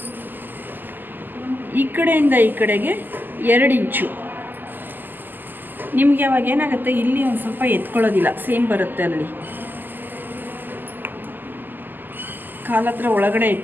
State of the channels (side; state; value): left; late; 0.089 ms